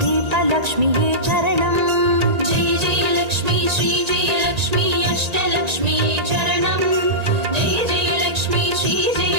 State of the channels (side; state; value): left; late; 1.9 ms